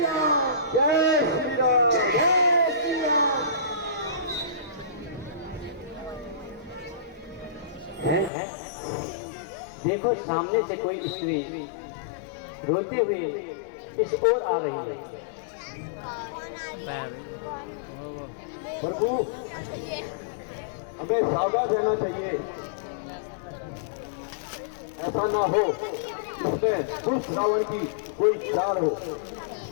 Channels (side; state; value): right; drops out; at 8.3 s